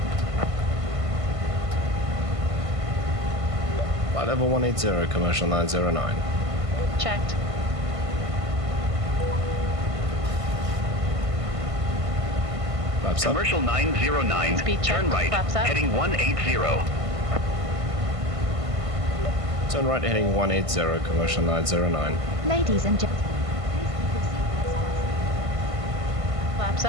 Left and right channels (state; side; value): late; left; 1.5 ms